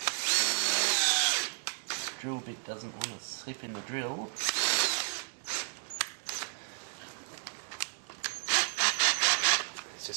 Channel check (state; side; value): silent; left; 56 dB below the other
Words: This drill bit doesn't want to slip in the drill. It's